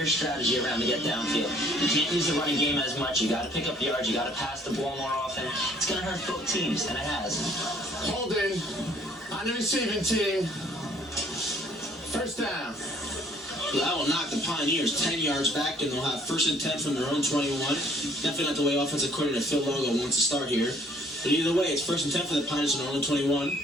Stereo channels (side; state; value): both; normal; correlation 0.59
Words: strategy around to get downfield. You can't use the running game as much. You got to pick up yards. You got to pass the ball more often. It's going to hurt both teams, and it has. Holding on the receiving team. 1st down. That will knock the Pioneers 10 yards back, and they'll have 1st and 10 from their own 21. Definitely not the way offensive coordinator Phil Logo wants to start here. But either way, it's 1st and 10 for the Pioneers on their own 21.